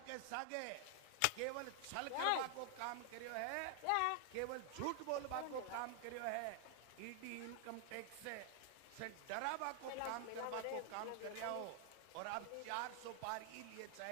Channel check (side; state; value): both; different; correlation 0.00